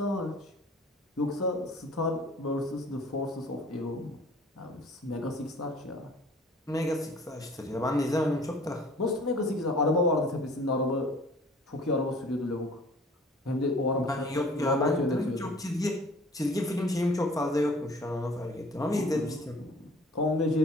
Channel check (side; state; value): both; normal; correlation 0.50